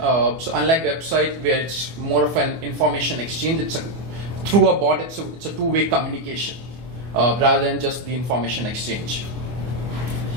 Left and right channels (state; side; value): late; left; 24 ms